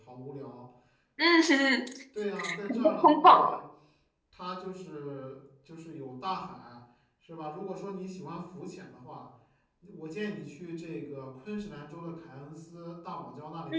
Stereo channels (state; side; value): identical; both; correlation 1.00